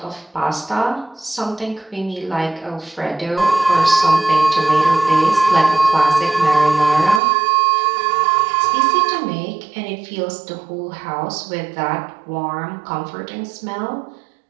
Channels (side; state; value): left; drops out; at 7.2 s